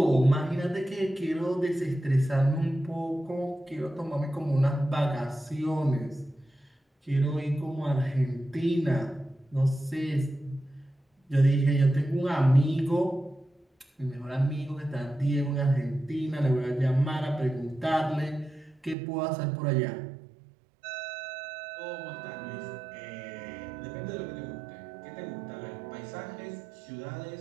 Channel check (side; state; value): left; drops out; at 18.9 s